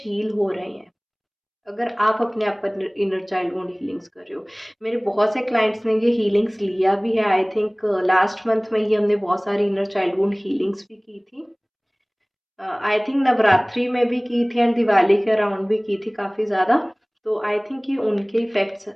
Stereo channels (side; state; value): both; identical; correlation 1.00